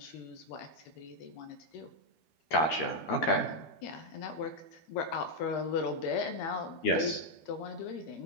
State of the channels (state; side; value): late; right; 13 ms